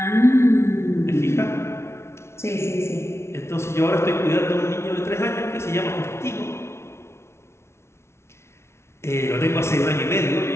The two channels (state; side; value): late; right; 0.13 ms